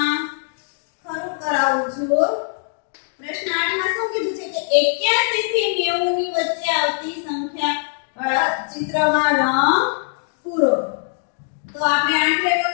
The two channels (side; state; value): right; silent; 65 dB below the other